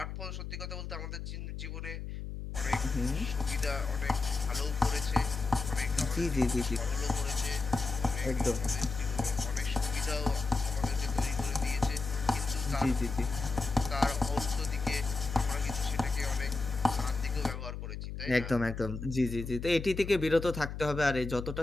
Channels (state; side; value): noise; left; hum, 6 dB below the sound